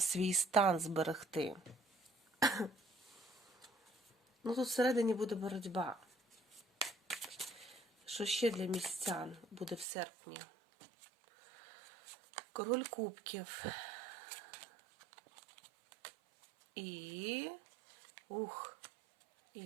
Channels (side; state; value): left; drops out; at 9.9 s